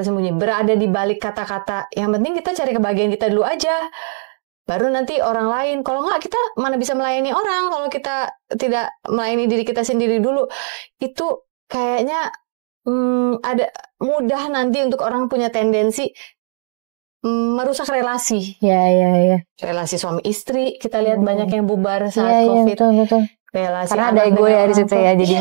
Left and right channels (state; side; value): silent; left; 67 dB below the other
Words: berada di balik kata-kata. Yang penting kita cari kebahagiaan kita dulu aja. Baru nanti orang lain. Kalau nggak, kita mana bisa melayani orang kalau kita tidak melayani diri kita sendiri dulu. Itu kayaknya ada mudah nanti untuk orang punya tendensi merusak relasi. Ya. Relasi suami istri, kita lihat banyak yang bubar saat COVID. Betul. Relasi karena anak ada ego ya di situ ya